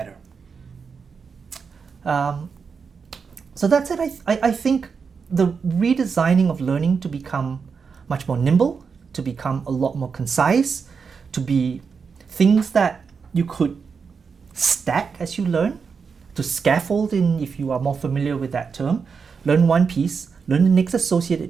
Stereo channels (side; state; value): left; quieter; 5.6 dB